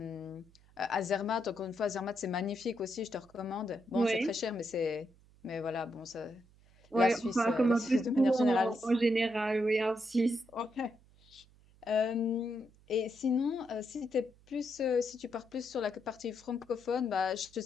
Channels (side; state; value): right; noise; hum, 28 dB below the sound